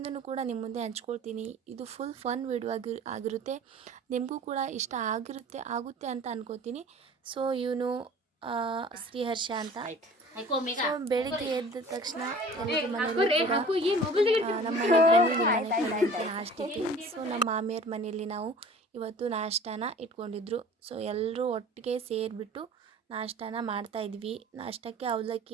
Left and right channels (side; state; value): both; normal; correlation 0.45